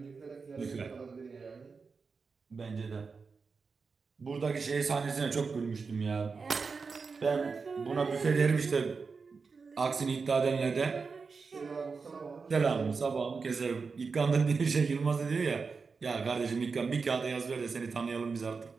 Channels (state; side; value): quieter; left; 4.9 dB